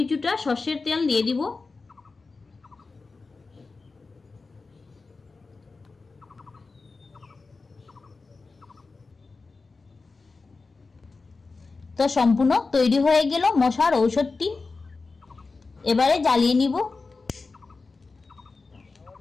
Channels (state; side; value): quieter; right; 4.0 dB